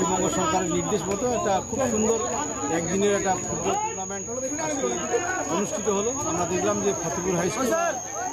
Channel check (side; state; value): both; identical; correlation 1.00